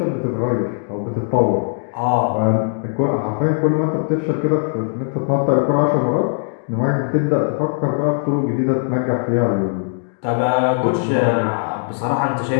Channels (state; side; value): silent; right; digital silence